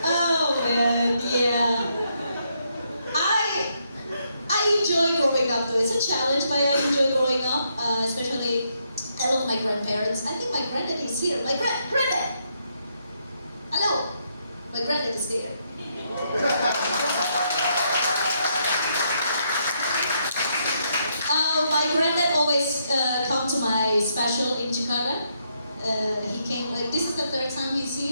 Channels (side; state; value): both; inverted; correlation -0.77